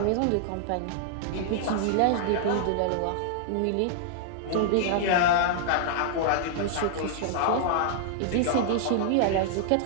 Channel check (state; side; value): different; both; correlation -0.01